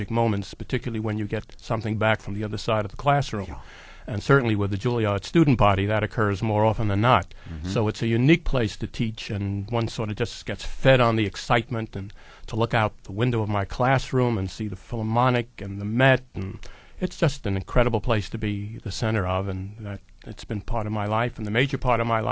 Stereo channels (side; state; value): both; identical; correlation 1.00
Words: moments, particularly when you get something back from the other side of the classroom. Yeah. And certainly with the Juilliard student body, that occurs more often than not. So it's a unique place to teach, and one sort of just gets fed on the excitement, and to look out the window of my classroom and see the Philharmonic and the Met, and it's just an incredible place to be the center of, and that it's been part of my life, and the major part of my